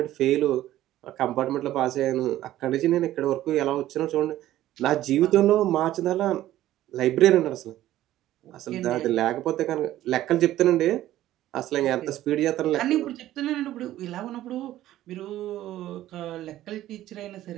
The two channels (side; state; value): left; quieter; 14.0 dB